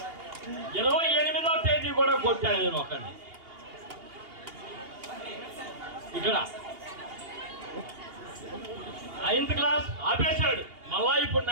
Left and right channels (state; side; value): late; left; 2.8 ms